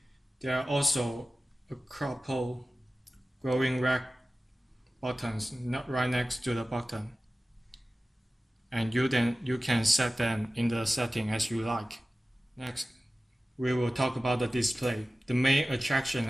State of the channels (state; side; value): normal; both; correlation 0.96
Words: There are also a couple glowing red buttons right next to the button, and you can set them in the setting as you like. Next, we will talk about the display. The main